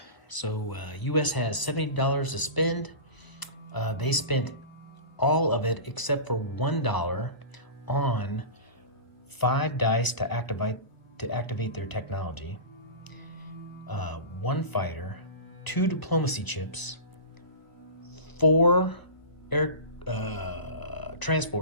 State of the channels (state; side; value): late; right; 1.0 ms